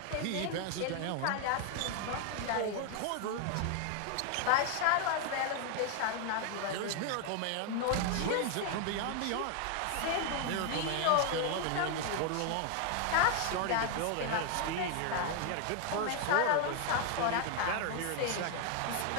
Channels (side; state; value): both; different; correlation 0.00